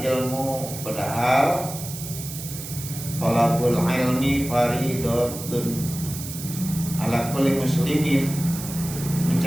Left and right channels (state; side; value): noise; right; hiss, 10 dB below the sound